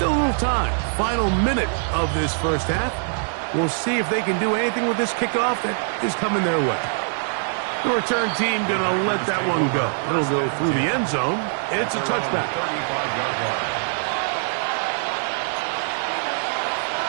a little time. Final minute of this 1st half. We'll see if they can do anything with this kickoff that is coming their way. The return team going to let that one go. It'll go through the end zone. It's a touchback.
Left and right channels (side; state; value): left; silent; digital silence